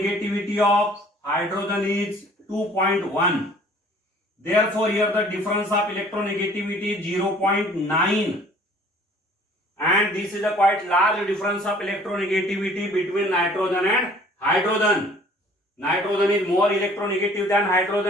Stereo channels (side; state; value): both; normal; correlation 0.53